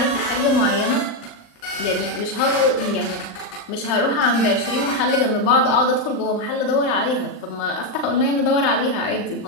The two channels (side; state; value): right; late; 39 ms